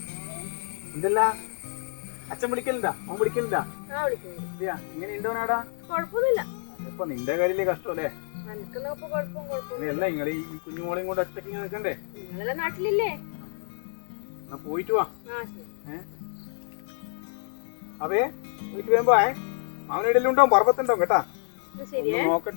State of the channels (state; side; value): silent; right; 59 dB below the other